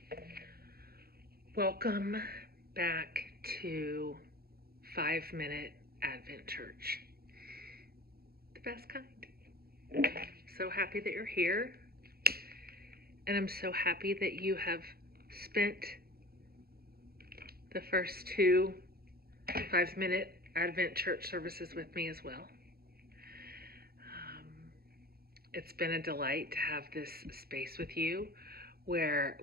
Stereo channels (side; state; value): left; late; 0.45 ms